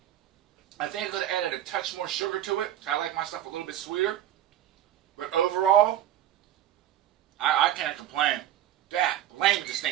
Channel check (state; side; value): quieter; left; 11.9 dB